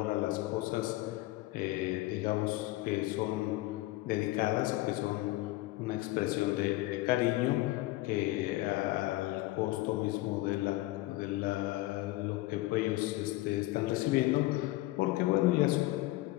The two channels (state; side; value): quieter; right; 18.7 dB